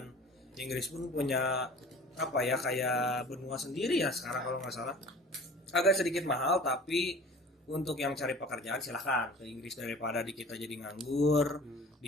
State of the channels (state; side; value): normal; both; correlation 0.44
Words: Inggris pun punya apa ya kayak benua sendiri ya sekarang kalau nggak salah, agak sedikit mahal. Tapi untuk yang cari pekerjaan silahkan ke Inggris daripada di kita jadi nganggur,